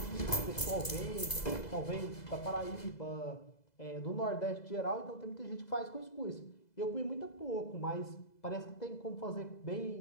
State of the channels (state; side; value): late; right; 2.0 ms